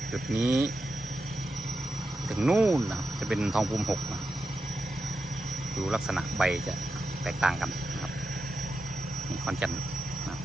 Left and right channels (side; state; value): both; normal; correlation 0.89